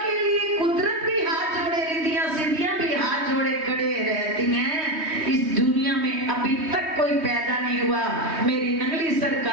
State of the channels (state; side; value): late; left; 3.2 ms